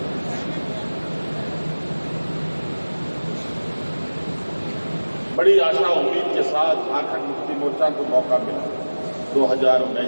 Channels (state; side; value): inverted; both; correlation -1.00